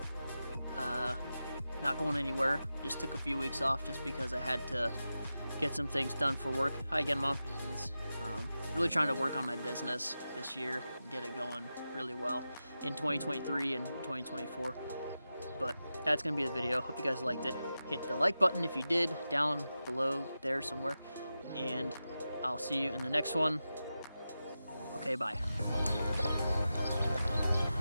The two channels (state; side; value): inverted; both; correlation -0.92